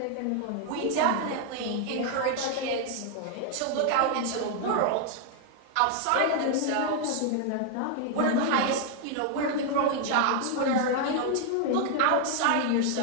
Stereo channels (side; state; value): both; different; correlation 0.00